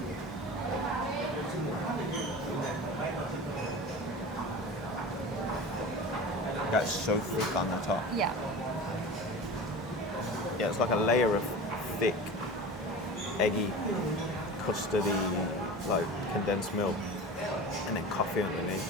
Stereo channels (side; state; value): both; normal; correlation 0.33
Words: That's so thick on the top. Yeah. Yeah, it's like a layer of thick, eggy, custardy, like condensed milk, and then coffee